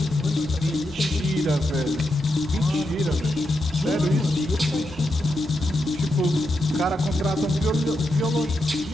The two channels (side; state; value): both; normal; correlation 0.85